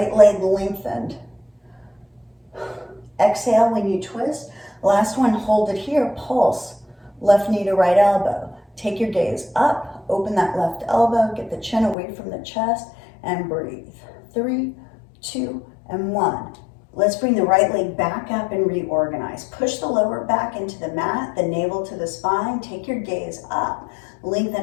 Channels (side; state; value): right; drops out; at 12.0 s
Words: leg lengthened. Exhale when you twist. Last one, hold it here, pulse. Left knee to right elbow. Take your gaze up, open that left elbow, get the chin away from the chest, and breathe. 3, 2, and 1. Let's bring the right leg back up and reorganize. Push the lower back into the mat, the navel to the spine. Take your gaze up.